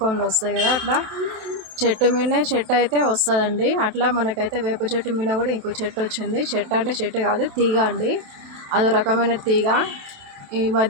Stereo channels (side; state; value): left; late; 27 ms